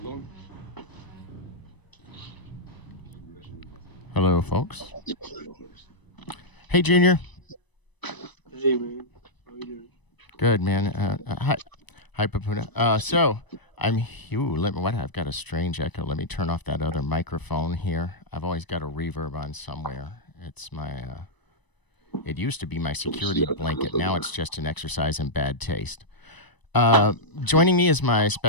on. Hello, folks. Hey, Junior. Hey, man. How you doing? Good, man. Hi, Papuna. So I'm. I've got a strange echo. Let me turn off that other microphone here. I've always got a reverb on somewhere. It's my. It used to be my security blanket. Now it's just an exercise in bad taste. Joining me is my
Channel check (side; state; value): right; late; 1.0 ms